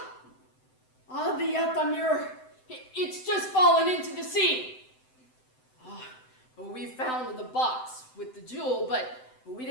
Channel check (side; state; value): right; late; 7.8 ms